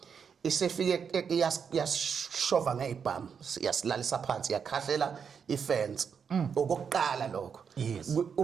isefike yashova ngezibhamu yasilalisa phansi yakhahlela ifence okokuqala lokho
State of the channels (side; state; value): left; quieter; 6.7 dB